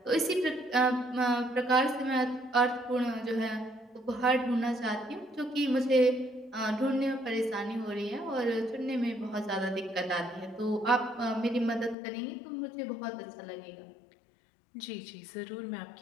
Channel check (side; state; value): right; drops out; at 12.0 s